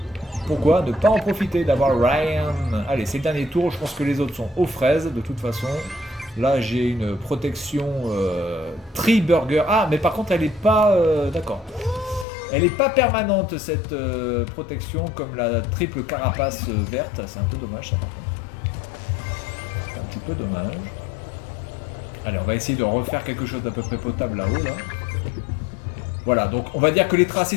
Pourquoi ne pas en profiter d'avoir Ryan? Allez, c'est le dernier tour, je pense que les autres sont aux fraises, de toute façon. Là, j'ai une protection Tree Burger. Ah, mais par contre, elle est pas... d'accord. Elle n'est pas permanente cette protection comme la triple carapace verte. C'est un peu dommage ça par contre. C'est un petit peu dommage. Allez, on va essayer de refaire quelque chose d'à peu près potable là-haut là. Voilà, donc on va dire que les tracés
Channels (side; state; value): right; drops out; at 12.2 s